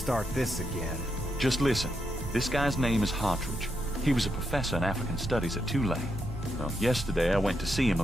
this again. Just listen. This guy's name is Hartridge. He was a professor in African Studies at Tulane. Well, yesterday I went to see him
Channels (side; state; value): both; normal; correlation 0.82